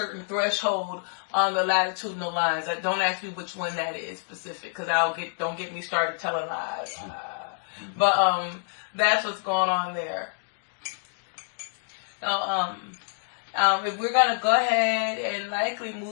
threshold on the latitudinal lines. Don't ask me which one that is specific, because don't get me started telling lies. But that's what's going on there. So, if we're going to go ahead and likely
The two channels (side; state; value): right; silent; digital silence